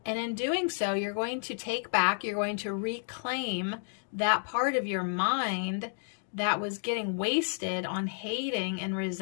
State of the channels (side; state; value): right; silent; digital silence